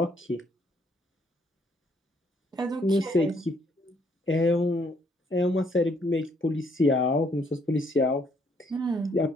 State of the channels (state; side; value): normal; both; correlation 0.68